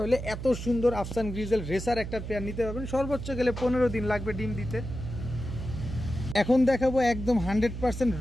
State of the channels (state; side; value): noise; right; hum, 7 dB below the sound